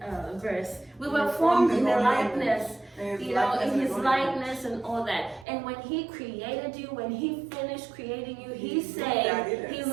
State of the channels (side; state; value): left; drops out; at 5.5 s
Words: verse? We were formed in the likeness, you know, in his likeness and all that. And when he created you, when he finished creating you, he